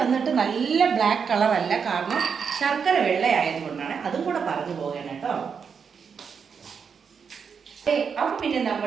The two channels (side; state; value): left; quieter; 6.4 dB